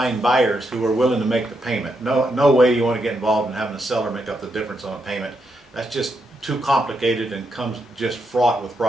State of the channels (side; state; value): both; normal; correlation 0.81